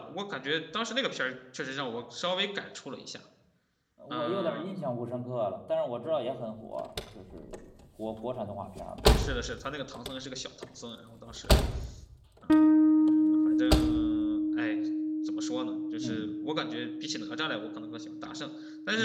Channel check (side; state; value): both; identical; correlation 1.00